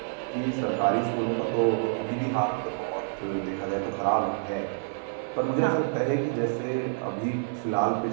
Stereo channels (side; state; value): left; silent; 57 dB below the other